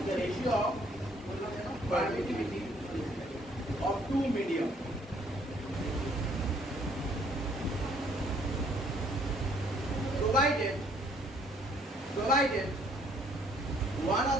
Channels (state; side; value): normal; both; correlation 0.63